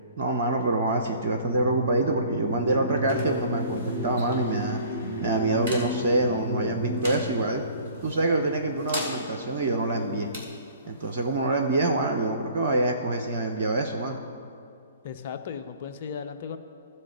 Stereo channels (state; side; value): inverted; both; correlation -0.50